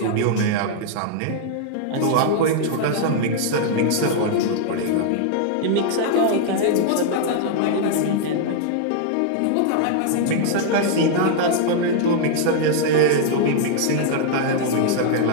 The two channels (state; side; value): different; both; correlation -0.01